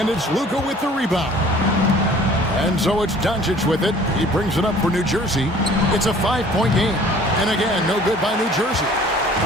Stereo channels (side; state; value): both; normal; correlation 0.51